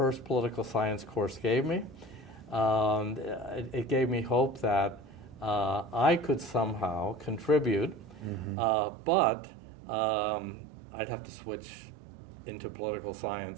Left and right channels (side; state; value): left; drops out; at 8.6 s